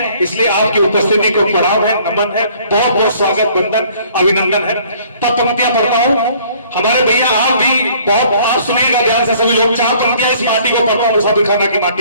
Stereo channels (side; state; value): both; inverted; correlation -0.57